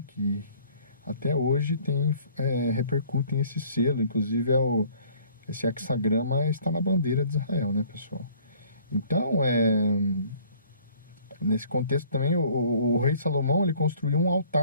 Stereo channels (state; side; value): inverted; both; correlation -0.56